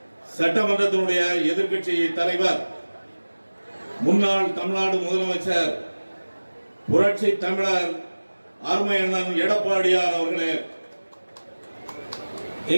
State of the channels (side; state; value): both; inverted; correlation -1.00